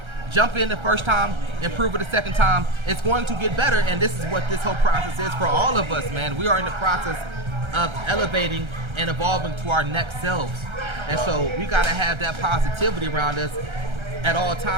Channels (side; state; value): left; late; 1.3 ms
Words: Jump in the first time, improve it the second time. It's going to get better, and this is what this whole process is for all of us, man. We are in the process of elevating and evolving to our next selves. And so we got to have that positivity around us at all